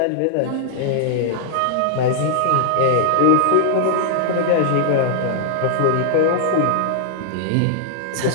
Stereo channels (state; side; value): different; both; correlation -0.01